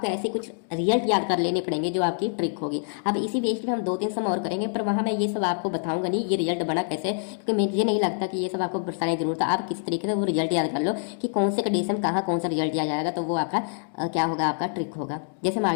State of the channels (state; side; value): silent; right; digital silence